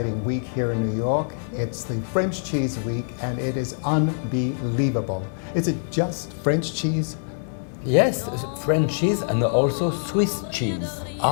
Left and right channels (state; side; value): silent; right; 62 dB below the other